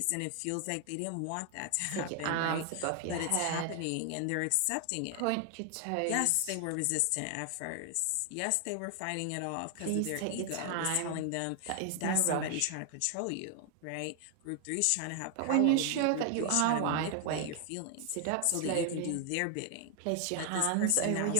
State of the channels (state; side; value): different; both; correlation 0.00